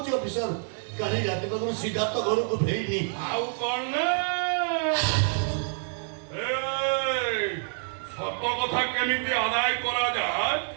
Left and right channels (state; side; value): silent; left; 60 dB below the other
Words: ଅଫିସର କାଲି ରାତି ପାଖରୁ ସିଦ୍ଧାର୍ଥ ଘରକୁ ଫେରିନି। ଆଉ କଣ ସତ କଥା କେମିତି ଆଦାୟ କରାଯାଏ